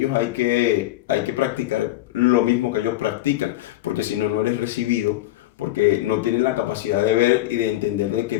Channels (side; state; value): right; quieter; 15.8 dB